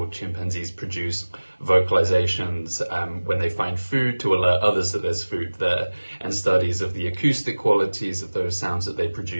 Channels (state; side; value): inverted; both; correlation -1.00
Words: chimpanzees produce vocalizations when they find food to alert others that there's food there. And studies of the acoustic qualities of those sounds that they